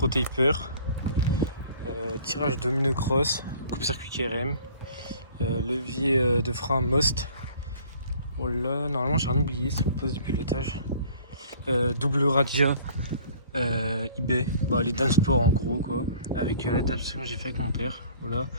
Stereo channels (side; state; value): both; inverted; correlation -0.52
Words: Taper. Tirage domino cross, coupe-circuit KRM. Levier de frein Most. Oh là, normalement j'ai rien oublié sur le poste de pilotage. Double radia eBay, les Dansport en gros quoi, avec l'adaptation que j'ai fait avec mon père, voilà.